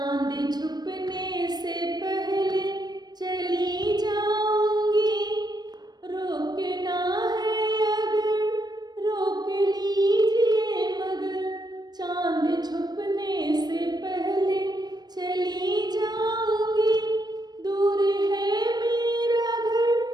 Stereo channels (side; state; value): left; late; 0.19 ms